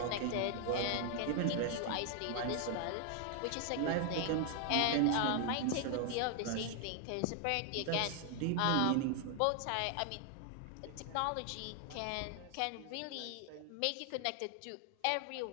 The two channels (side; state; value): both; different; correlation 0.00